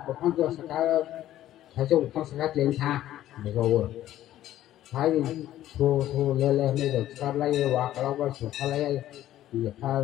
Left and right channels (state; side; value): quieter; right; 13.1 dB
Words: bukan tu sekarang, saya bukan sekarang tinggal, betul. Hai thu lele ni được sắp lấy quả kalau có sụp lấy thì phải